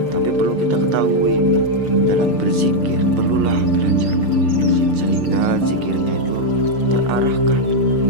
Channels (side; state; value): left; late; 6.7 ms